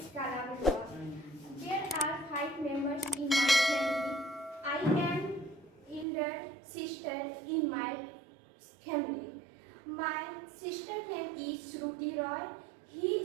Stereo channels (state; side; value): drops out; left; at 6.1 s